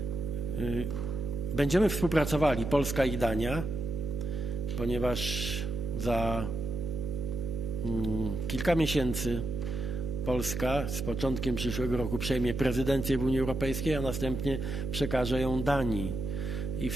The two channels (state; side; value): noise; right; hum, 4 dB below the sound